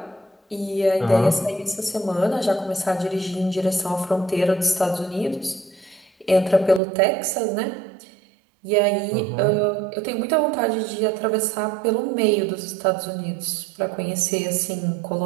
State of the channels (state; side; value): drops out; left; at 6.8 s